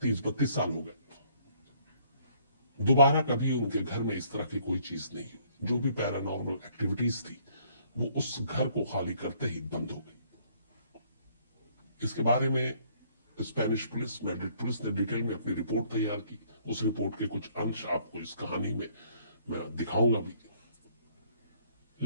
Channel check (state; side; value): inverted; both; correlation -0.64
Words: 30-32 साल हो गए। दोबारा कभी उनके घर में इस तरह की कोई चीज नहीं हुई। जो भी पैरानॉर्मल एक्टिविटीज थी वो उस घर को खाली करते ही बंद हो गई। इसके बारे में स्पेनिश पुलिस, मैड्रिड पुलिस ने डिटेल में अपनी रिपोर्ट तैयार की। उस रिपोर्ट के कुछ अंश आपको इस कहानी में मैं दिखाऊंगा भी।